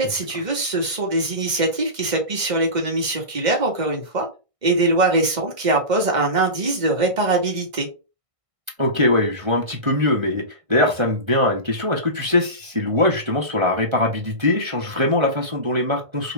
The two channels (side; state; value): left; late; 1.6 ms